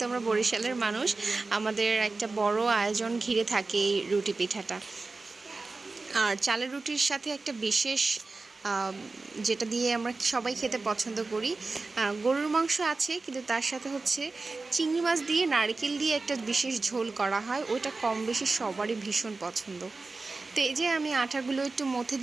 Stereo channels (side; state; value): left; quieter; 3.7 dB